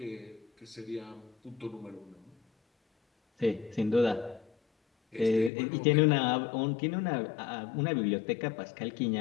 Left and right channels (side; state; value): right; drops out; at 5.5 s